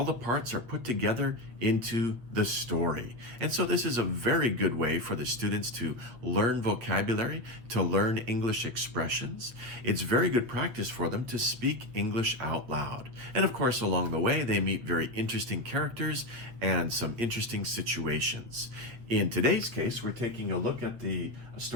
the parts are put together into the story. And so this is a very good way for the students to learn vocabulary, to learn English expressions. It's very good practice for them to speak English out loud. And of course, along the way, they meet very interesting characters and some interesting situations. In today's case, we're taking a look at the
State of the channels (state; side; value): late; left; 8.6 ms